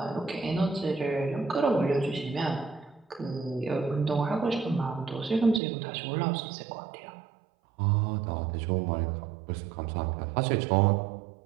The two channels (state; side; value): drops out; left; at 5.6 s